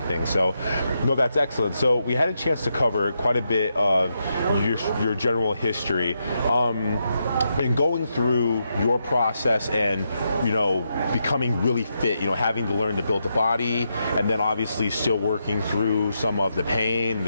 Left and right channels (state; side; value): inverted; both; correlation -0.83